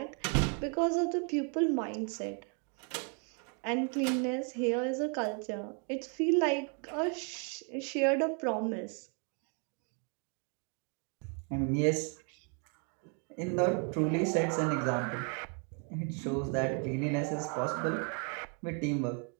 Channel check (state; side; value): quieter; left; 39.0 dB